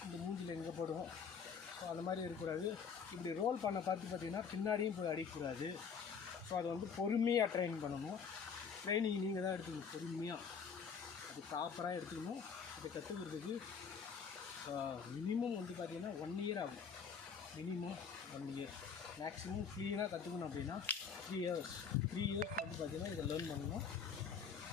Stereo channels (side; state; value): right; quieter; 6.3 dB